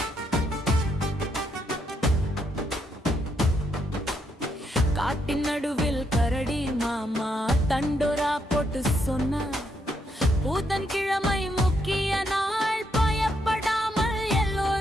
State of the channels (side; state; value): both; normal; correlation 0.77